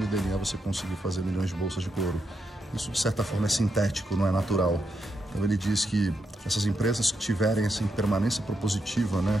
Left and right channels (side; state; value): both; normal; correlation 0.83